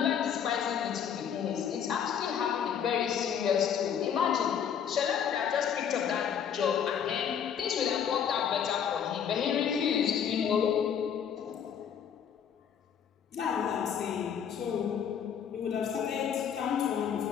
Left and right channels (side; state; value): right; quieter; 8.1 dB